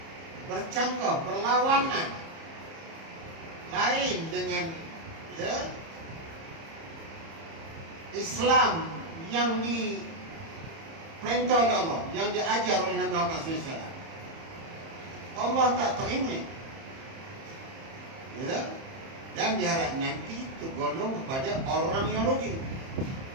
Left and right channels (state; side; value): late; left; 30 ms